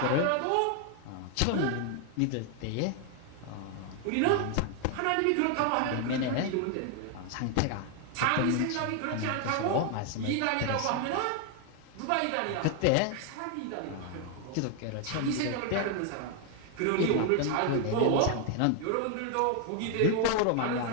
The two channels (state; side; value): different; both; correlation 0.00